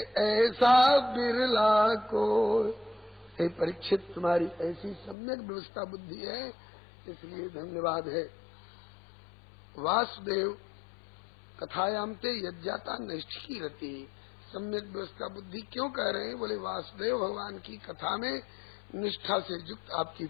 ऐसा बिरला को। हे परीक्षित, तुम्हारी ऐसी सम्यक व्यवस्था बुद्धि है, इसलिए धन्यवाद है। वासुदेव कथायाम ते यज्ञाता नैष्ठिकी रति। सम्यक व्यवस्था बुद्धि क्यों कह रहे हैं? बोले वासुदेव भगवान की कथा में निष्ठा से युक्त आपकी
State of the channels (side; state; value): right; drops out; at 5.2 s